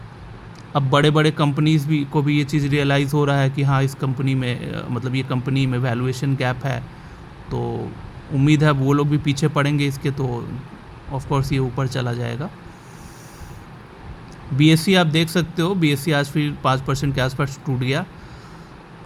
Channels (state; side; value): identical; both; correlation 1.00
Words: अब बड़े बड़े कंपनीज़ को भी ये चीज़ रियलाइज़ हो रहा है कि हाँ, इस कंपनी में, मतलब ये कंपनी में वैल्यूएशन गैप है, तो उम्मीद है वो लोग भी पीछे पड़ेंगे इसके, तो ऑफ कोर्स ये ऊपर चला जाएगा। BSE आप देख सकते हो, BSE आज फिर 5% के आसपास टूट गया।